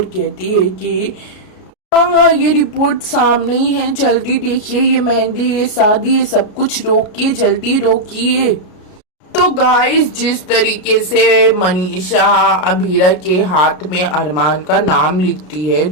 कहती है कि हाँ, ये रिपोर्ट सामने ही है, जल्दी देखिए, ये मेहंदी, ये शादी, ये सब कुछ रोकिए, जल्दी रोकिए। तो गाइस, जिस तरीके से मनीषा अभीरा के हाथ में अरमान का नाम लिखती है,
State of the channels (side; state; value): right; late; 33 ms